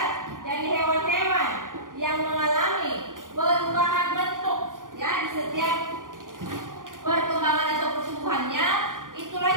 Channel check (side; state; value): left; late; 0.89 ms